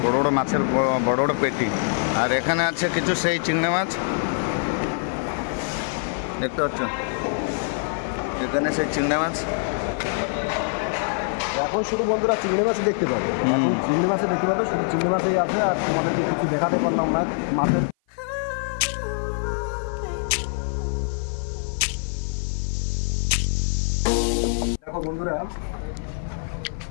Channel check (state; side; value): silent; right; 55 dB below the other